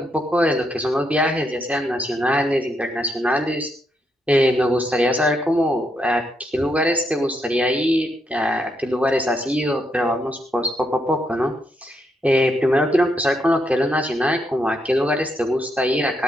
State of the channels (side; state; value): both; normal; correlation 0.78